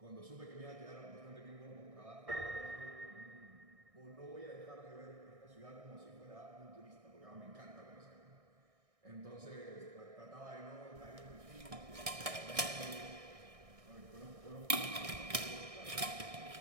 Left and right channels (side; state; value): left; late; 1.6 ms